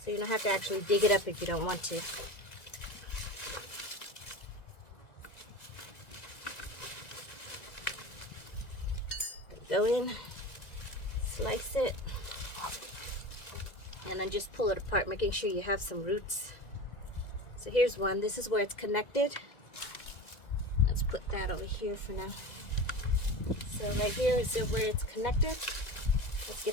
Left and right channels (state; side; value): late; right; 1.9 ms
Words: So you don't have to actually dig it up if you don't want to. Go in, slice it, and then just pull it apart, making sure you have some roots. So here's one. This is where it's connected. Let's put that over here for now. So right here is where it's connected. Let's